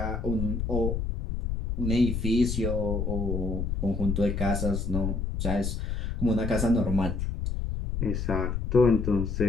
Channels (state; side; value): noise; left; rumble, 2 dB below the sound